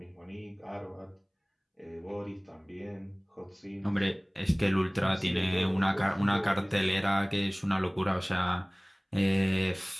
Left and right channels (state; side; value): identical; both; correlation 1.00